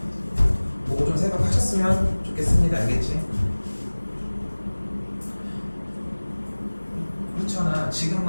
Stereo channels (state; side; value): inverted; both; correlation -1.00